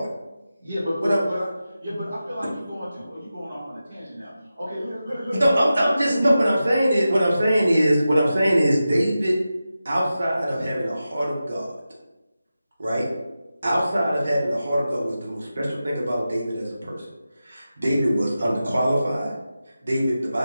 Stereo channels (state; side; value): inverted; both; correlation -0.93